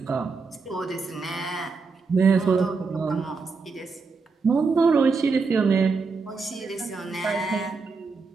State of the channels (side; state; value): left; quieter; 4.5 dB